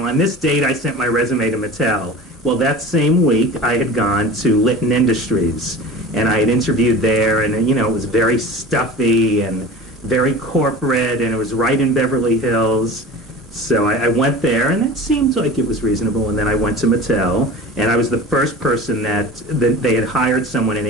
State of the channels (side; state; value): both; normal; correlation 0.36